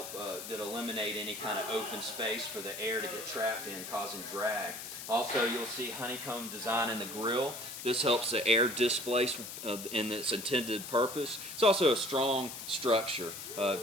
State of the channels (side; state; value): left; noise; hiss, 9 dB below the sound